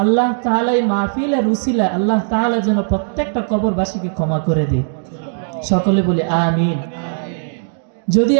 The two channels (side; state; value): left; silent; digital silence